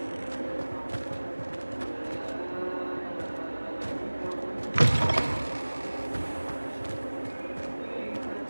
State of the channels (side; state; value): both; inverted; correlation -1.00